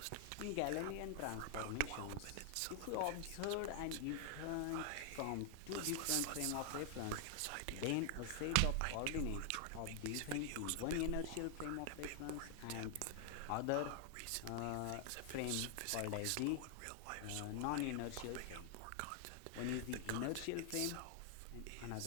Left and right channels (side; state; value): both; different; correlation 0.00